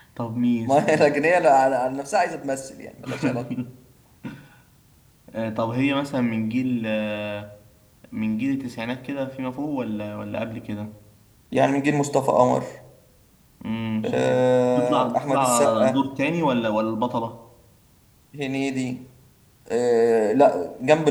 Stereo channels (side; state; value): both; identical; correlation 1.00